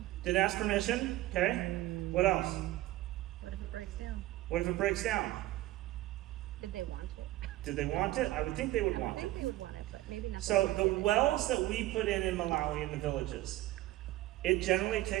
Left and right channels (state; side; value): quieter; left; 16.5 dB